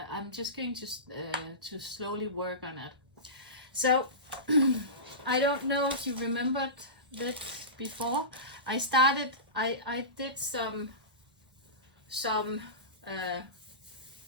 I'm just going to slowly work on it. So I don't know if you remembered that before. I started. I did some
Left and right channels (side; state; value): left; late; 1.1 ms